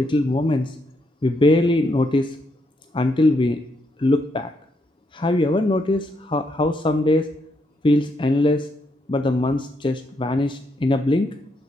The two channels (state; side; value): normal; both; correlation 0.77